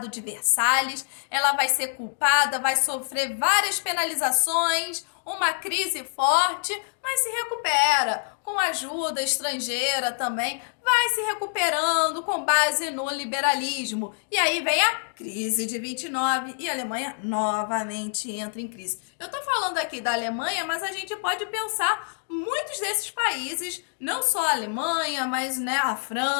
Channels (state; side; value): silent; right; digital silence